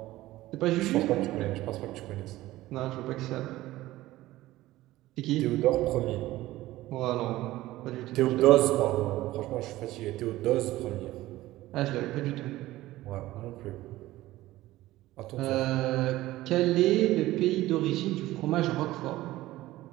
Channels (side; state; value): left; quieter; 16.7 dB